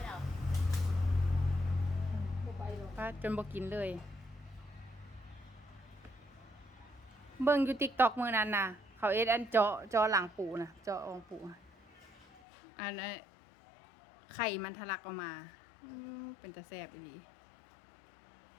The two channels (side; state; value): right; drops out; at 12.4 s